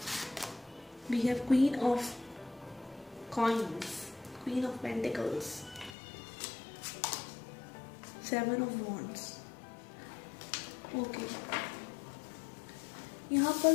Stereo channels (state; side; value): drops out; right; at 6.0 s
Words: We have queen of coins, queen of pentacles, seven of wands. Okay, यहाँ पर